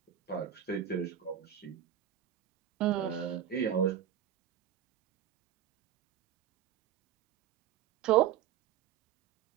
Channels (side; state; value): left; quieter; 10.2 dB